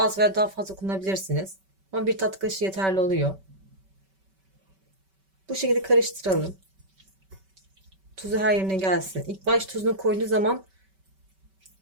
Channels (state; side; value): late; left; 5.2 ms